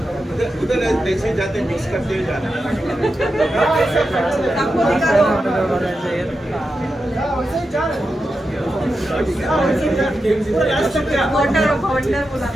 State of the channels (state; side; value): normal; both; correlation 0.89